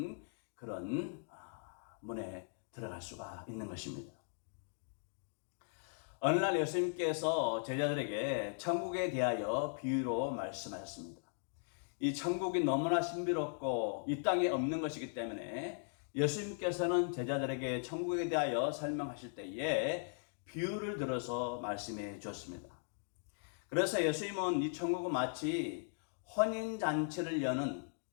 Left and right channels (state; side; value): silent; right; digital silence